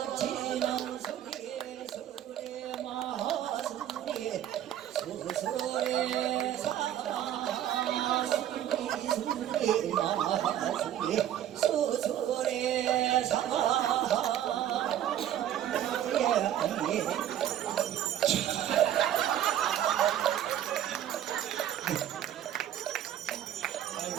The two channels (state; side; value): quieter; left; 11.3 dB